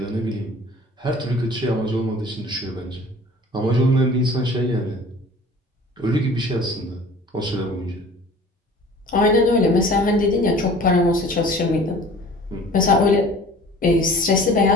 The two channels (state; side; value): normal; both; correlation 0.46